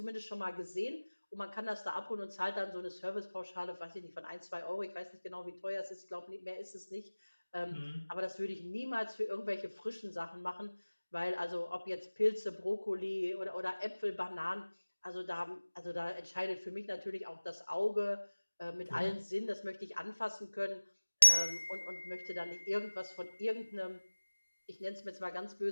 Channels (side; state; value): both; inverted; correlation -1.00